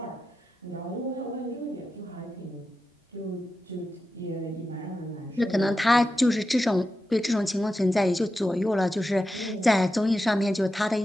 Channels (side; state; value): both; normal; correlation 0.90